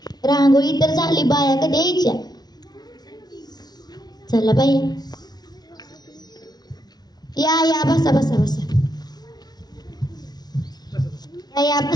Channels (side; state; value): right; late; 0.19 ms